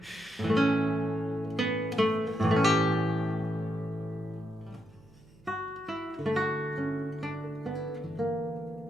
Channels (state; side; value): noise; right; hum, 27 dB below the sound